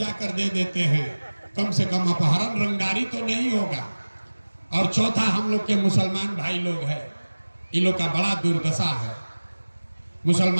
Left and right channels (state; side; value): inverted; both; correlation -1.00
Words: दे देते हैं, कम से कम अपहरण रंगारी तो नहीं होगा। और चौथा, हम लोग के मुसलमान भाई लोग हैं, इन लोग का बड़ा दुर्दशा है।